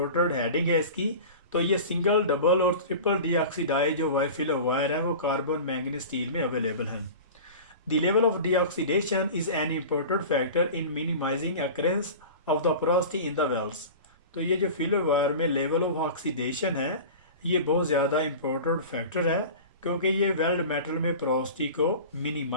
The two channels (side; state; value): both; inverted; correlation -0.34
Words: हेडिंग है इसकी। तो ये सिंगल डबल और ट्रिपल डीऑक्सीडाइज जो वाई फिलर वायर है वो कार्बन मैंगनीज स्टील में अवेलेबल हैं। The level of deoxidation is an important factor in minimising occurrence of the porosity in the welds. तो ये जो फिलर वायर में लेवल ऑफ ऑक्सीडेशन है ये बहुत ज़्यादा इम्पोर्टेंट फैक्टर है, क्योंकि ये वेल्ड मेटल में पोरोसिटी को